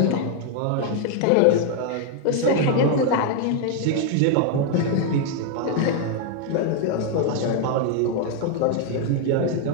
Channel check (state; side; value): different; both; correlation 0.00